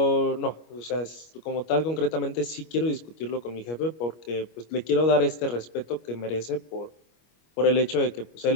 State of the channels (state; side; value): late; right; 25 ms